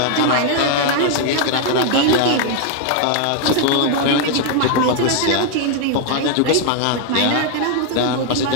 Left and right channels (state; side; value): different; both; correlation 0.00